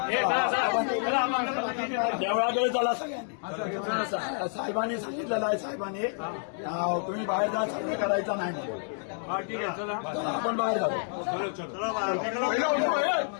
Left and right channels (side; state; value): right; silent; 59 dB below the other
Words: देवळाकडे चला सगळ्यांनी. साहेबांनी सांगितलेलं आहे साहेबांनी तुम्ही बाहेर जा सर्वे करायचा नाही म्हणून. हा ठीक आहे चला चला, आपण बाहेर जाऊ.